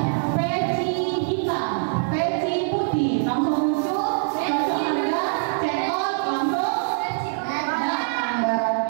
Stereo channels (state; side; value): silent; left; digital silence